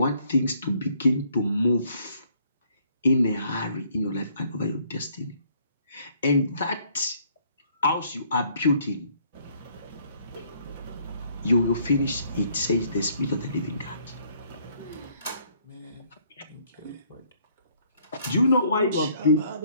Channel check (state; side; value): inverted; both; correlation -0.65